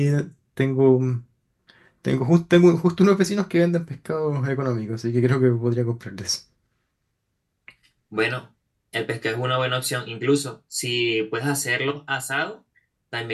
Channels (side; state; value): both; identical; correlation 1.00